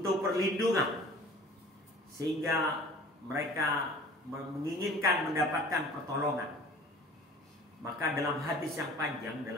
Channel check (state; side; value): normal; both; correlation 0.46